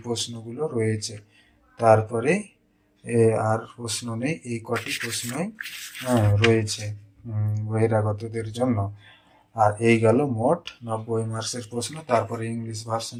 প্রশ্নগুলো রয়েছে। তারপরে আর প্রশ্ন নেই, এই কটি প্রশ্নই রয়েছে বহিরাগতদের জন্য। আর এই গেল মোট 90 মার্কসের প্রশ্ন। তারপরে ইংলিশ ভার্সন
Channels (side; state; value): both; identical; correlation 1.00